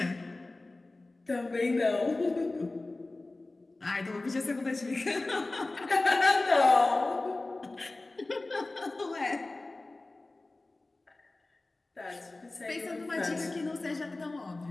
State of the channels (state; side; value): quieter; right; 3.0 dB